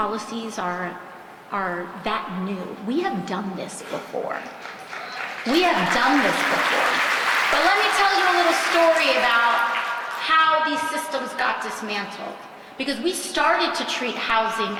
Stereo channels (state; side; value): identical; both; correlation 1.00